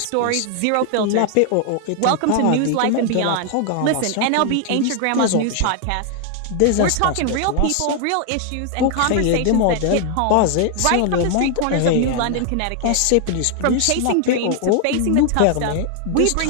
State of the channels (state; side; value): different; both; correlation 0.00